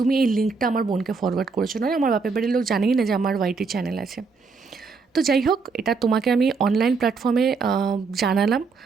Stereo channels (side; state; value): left; quieter; 4.7 dB